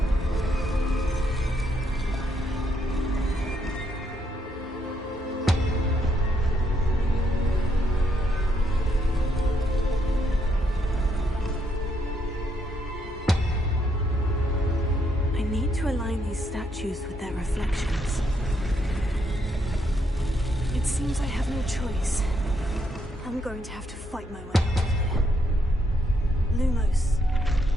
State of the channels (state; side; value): normal; both; correlation 0.76